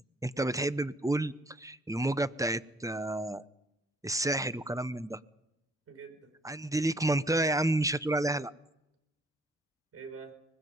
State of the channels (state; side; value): normal; both; correlation 0.62